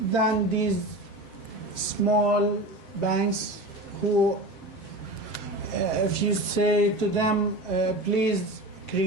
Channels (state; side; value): late; right; 7.6 ms